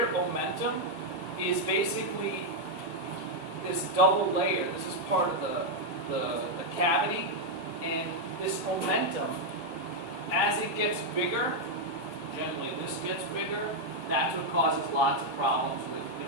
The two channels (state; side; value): late; left; 3.2 ms